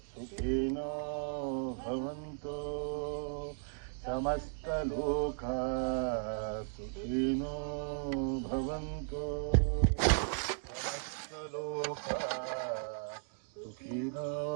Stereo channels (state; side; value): silent; left; digital silence